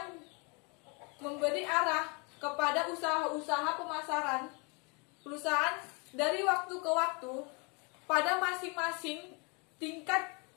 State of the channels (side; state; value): right; quieter; 32.0 dB